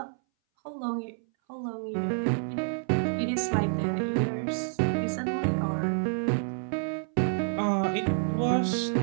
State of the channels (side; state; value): left; silent; 59 dB below the other